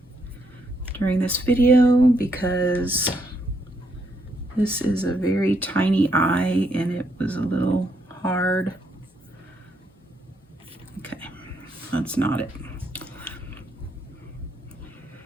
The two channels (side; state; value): both; normal; correlation 0.75